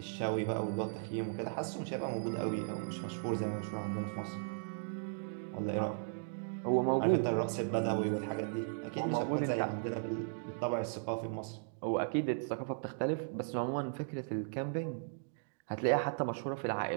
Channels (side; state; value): left; silent; digital silence